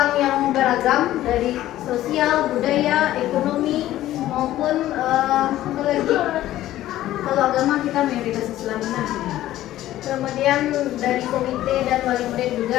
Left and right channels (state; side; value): quieter; right; 14.2 dB